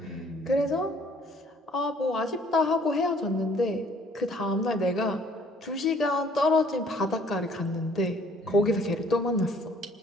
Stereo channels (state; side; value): normal; both; correlation 0.58